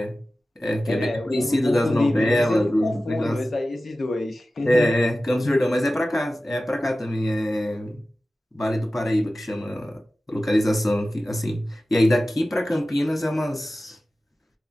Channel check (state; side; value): normal; both; correlation 0.95